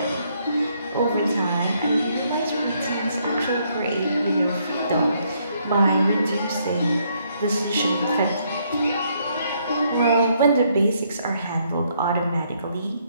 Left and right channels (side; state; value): both; inverted; correlation -0.71